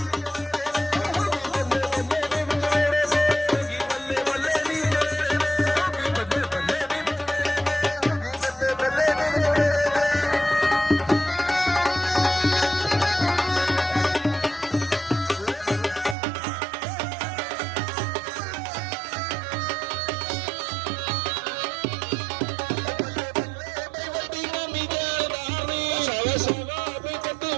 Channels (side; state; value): left; drops out; at 16.2 s